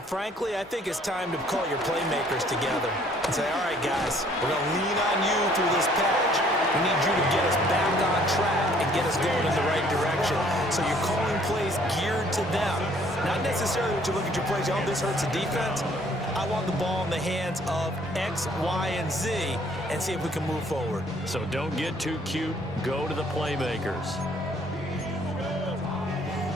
frankly, I think it's time to call your playmakers together and say, all right, guys, we're going to lean on you through this patch. We need you to get us back on track and get us going in the right direction. So you're calling plays geared to them. Not necessarily when you look at your plays, oh, this hurts the defense. I want the ball in the hands of X, Y, and Z and see if we can move forward. So don't get too cute. Go to the playmakers.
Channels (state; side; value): normal; both; correlation 0.60